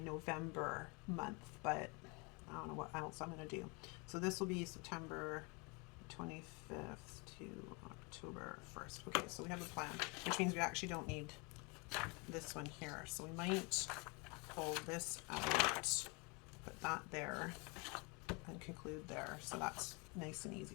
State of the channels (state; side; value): quieter; right; 30.4 dB